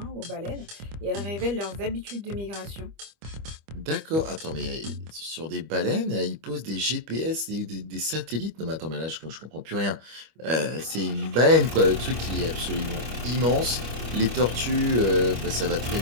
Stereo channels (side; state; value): left; late; 25 ms